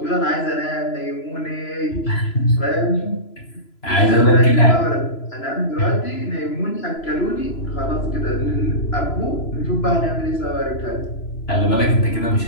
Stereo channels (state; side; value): late; right; 3.0 ms